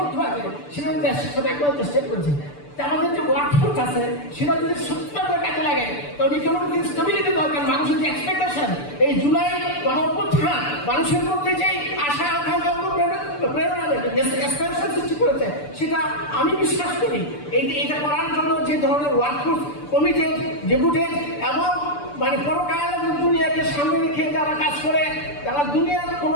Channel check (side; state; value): right; late; 6.9 ms